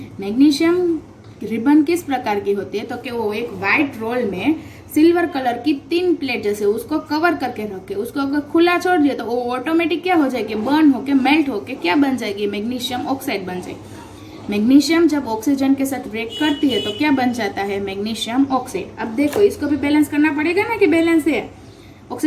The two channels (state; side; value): identical; both; correlation 1.00